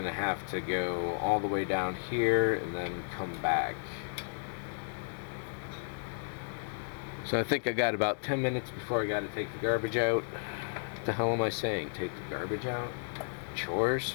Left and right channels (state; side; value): silent; right; digital silence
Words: to have to go all the way down here and then come back. So I think I got about 10 minutes before I got to take the garbage out. What the hell am I saying? Take the garbage out? Chores?